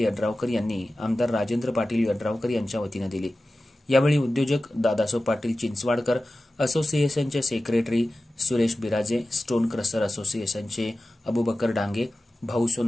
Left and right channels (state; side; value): normal; both; correlation 0.95